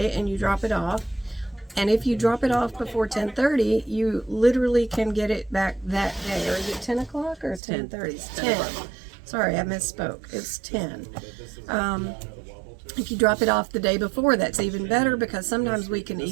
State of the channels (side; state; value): left; drops out; at 7.6 s